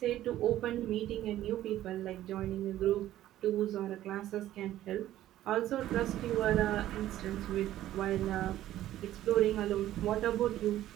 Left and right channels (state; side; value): quieter; left; 13.5 dB